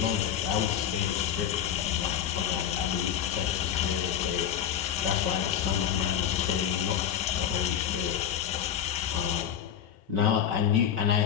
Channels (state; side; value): quieter; right; 9.5 dB